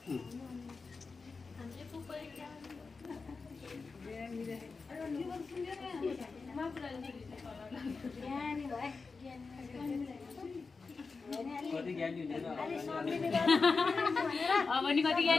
हामीले फुपू कति ज्ञानी हुँदैन अब नि कति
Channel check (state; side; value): quieter; right; 4.4 dB